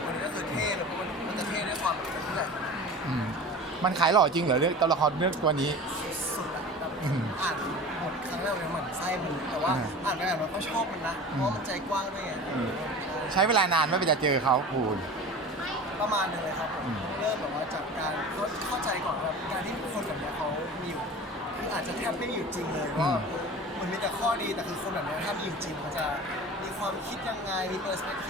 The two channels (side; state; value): both; normal; correlation 0.36